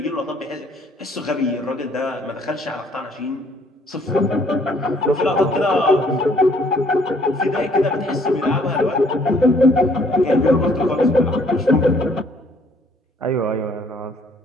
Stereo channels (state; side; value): normal; both; correlation 0.62